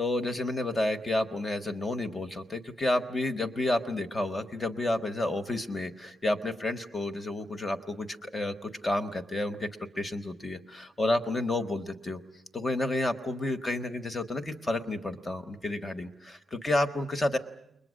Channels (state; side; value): normal; both; correlation 0.85